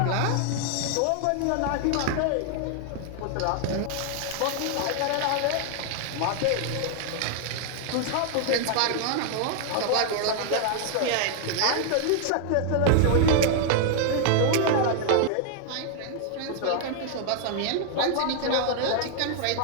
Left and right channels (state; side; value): different; both; correlation 0.00